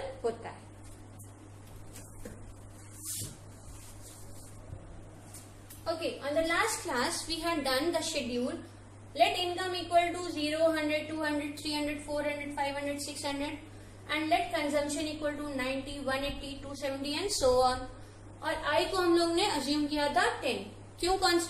होता है। Okay, on the last class we had done the schedule. Let income equal to 0, 100, 200, 300, 400, 500, 600 and let consumption equal to 90, 180, 270 and so on। और I को हम लोग ने अज्यूम किया था 10। क्यों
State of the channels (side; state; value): both; identical; correlation 1.00